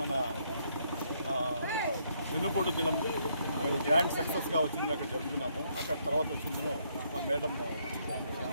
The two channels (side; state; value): both; inverted; correlation -0.72